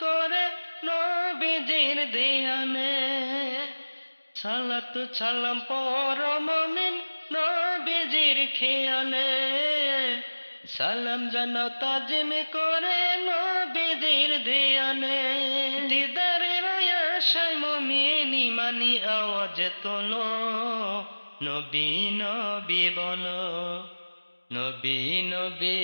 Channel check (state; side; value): inverted; both; correlation -1.00